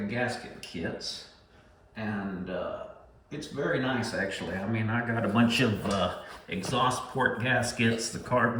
gasket kits, and it's very nice actually. I mean, I got a bunch of exhaust port gaskets, the carb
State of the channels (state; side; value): identical; both; correlation 1.00